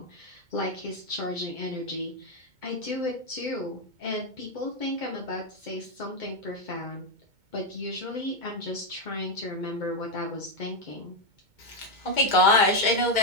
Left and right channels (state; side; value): late; left; 2.2 ms